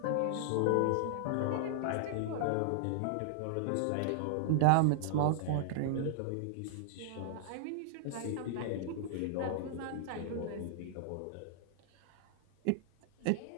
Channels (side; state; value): both; different; correlation -0.01